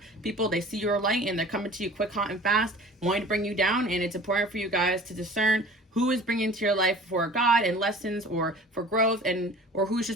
people, they see your light and they're coming to you quick, hot, and fast, wanting to bring you down. And it's important for you guys to discern who is bringing into your life for God and lessons or for growth, and or who's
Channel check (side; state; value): both; normal; correlation 0.44